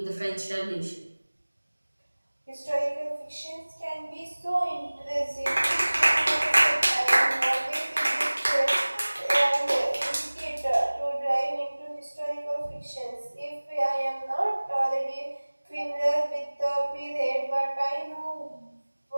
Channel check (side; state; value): both; inverted; correlation -1.00